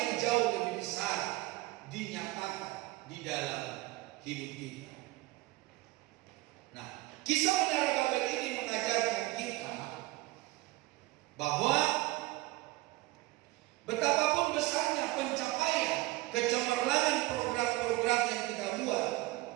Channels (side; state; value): left; quieter; 20.2 dB